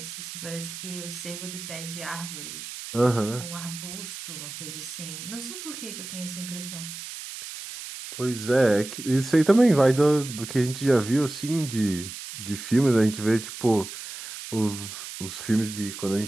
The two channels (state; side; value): noise; right; hiss, 10 dB below the sound